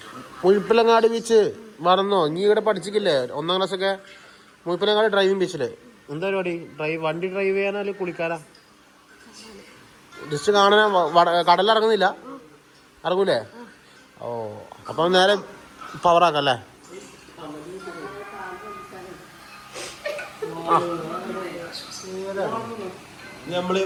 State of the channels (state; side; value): identical; both; correlation 1.00